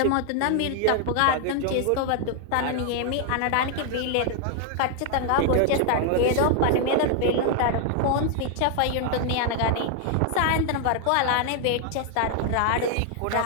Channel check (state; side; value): different; both; correlation 0.00